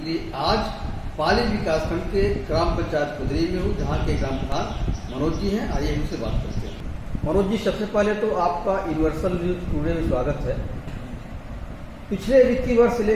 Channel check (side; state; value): both; identical; correlation 1.00